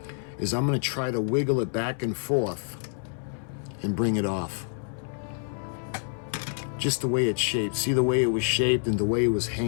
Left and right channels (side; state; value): right; silent; 60 dB below the other